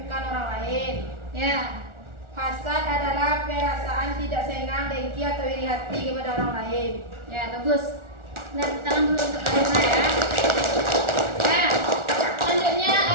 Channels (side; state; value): left; late; 1.4 ms